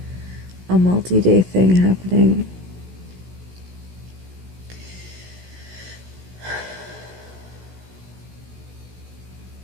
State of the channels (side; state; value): left; late; 16 ms